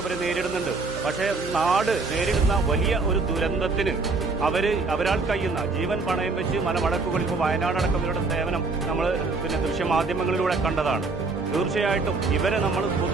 ഇവർ നേരിടുന്നുണ്ട്. പക്ഷേ നാട് നേരിടുന്ന വലിയ ഒരു ദുരന്തത്തിന് അവരാൾ കഴിയുന്ന ജീവൻ പണയം വെച്ച് മലമടക്കുകളിൽ ഇപ്പോൾ വയനാടടക്കം ഇവരുടെ സേവനം നമ്മൾ ദൃശ്യമാധ്യമങ്ങളിലൂടെ കണ്ടതാണ്. തീർച്ചയായിട്ടും ഇവരെ നമ്മൾ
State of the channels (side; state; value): left; quieter; 3.9 dB